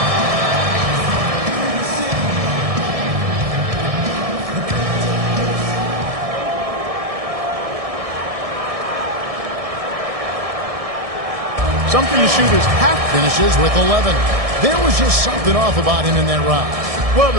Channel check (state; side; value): late; left; 1.6 ms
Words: Something the shooters have. Finishes with 11. There was just something off about him in that round. Well,